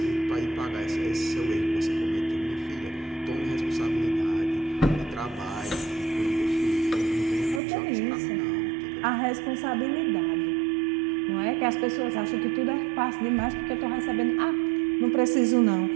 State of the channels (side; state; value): left; drops out; at 7.6 s